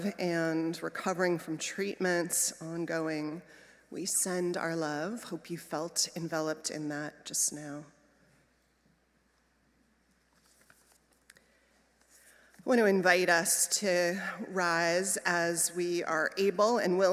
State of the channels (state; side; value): identical; both; correlation 1.00